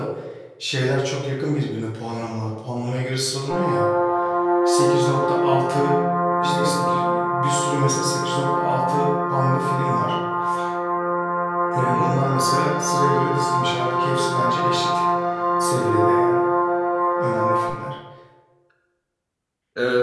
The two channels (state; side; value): identical; both; correlation 1.00